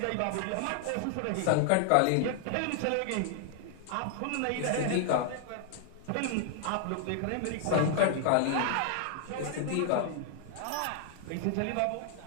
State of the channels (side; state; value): both; different; correlation 0.00